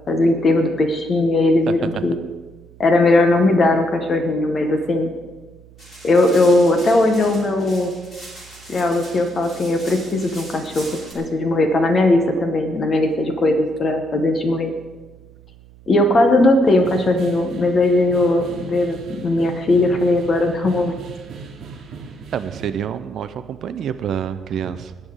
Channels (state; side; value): noise; right; hum, 24 dB below the sound